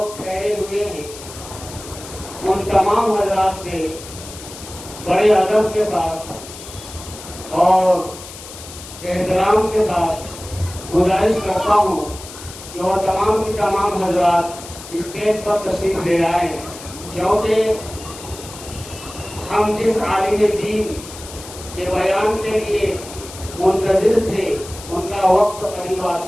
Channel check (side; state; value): left; noise; hiss, 14 dB below the sound